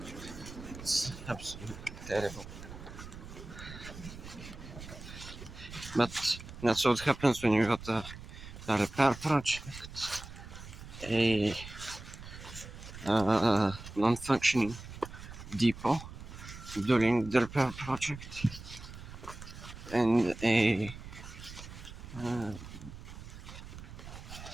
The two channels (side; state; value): right; noise; rumble, 13 dB below the sound